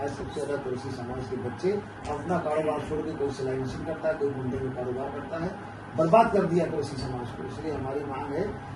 सबसे ज्यादा कुरैशी समाज के बच्चे अपना कारोबार छोड़ के कोई सिलाई मशीन करता है, कोई मुंडे में कारोबार करता है, बर्बाद कर दिया कुरैशी समाज को। इसलिए हमारी मांग है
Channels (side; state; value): both; identical; correlation 1.00